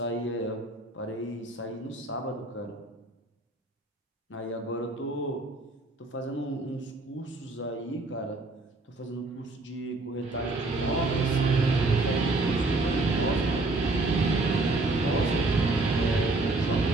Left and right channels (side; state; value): left; quieter; 3.0 dB